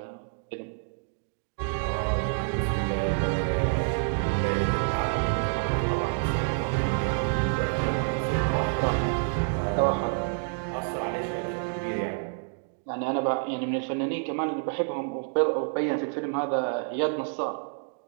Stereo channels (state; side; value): silent; left; digital silence